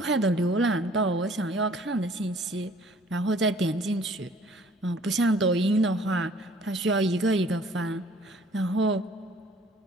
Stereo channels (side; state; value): both; normal; correlation 0.55